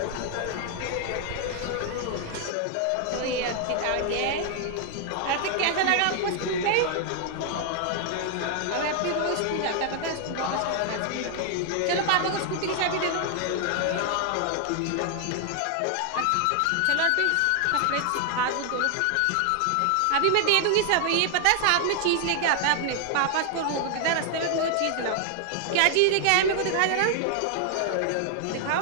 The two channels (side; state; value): both; different; correlation 0.00